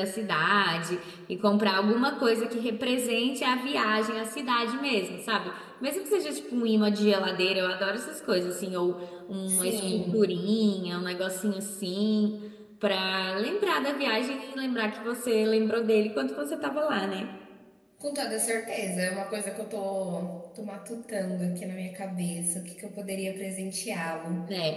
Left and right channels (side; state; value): both; identical; correlation 1.00